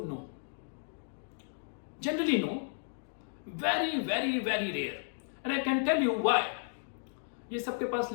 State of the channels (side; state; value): right; silent; digital silence